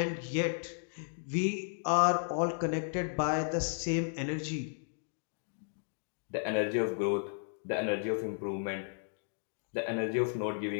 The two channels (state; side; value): silent; right; digital silence